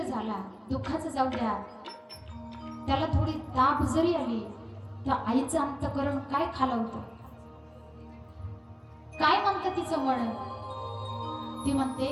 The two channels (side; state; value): both; identical; correlation 1.00